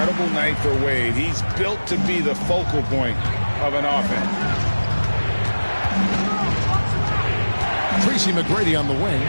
night for Wade. He's built to be the focal point of an offense. Tracy McGrady on the wing.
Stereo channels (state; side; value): inverted; both; correlation -1.00